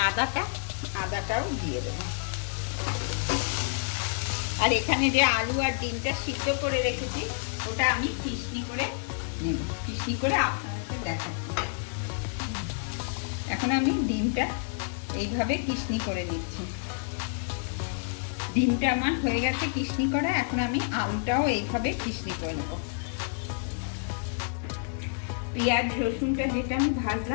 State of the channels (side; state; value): right; silent; digital silence